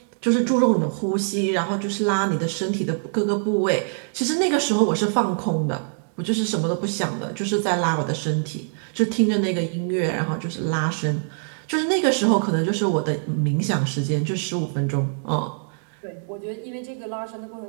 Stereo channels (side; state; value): left; silent; digital silence